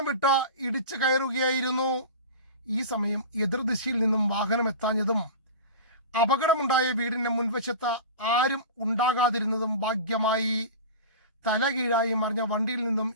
വിട്ട് ഇടിച്ചു കയറുകയായിരുന്നു. ഈ സമയം എതിർദിശയിൽ നിന്നും വാഹനം എത്താഞ്ഞതും അപകടമുണ്ടായ വീടിന്റെ മുൻവശത്ത് ആരും ഉണ്ടാകാതിരുന്നതും ഭാഗ്യമായി. തലകീഴായി മറിഞ്ഞ വണ്ടിയിൽ നിന്നും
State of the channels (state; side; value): inverted; both; correlation -0.31